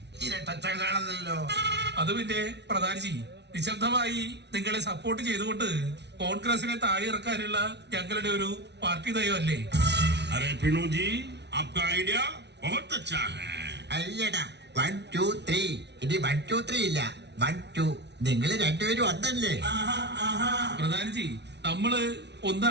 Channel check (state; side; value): late; left; 0.50 ms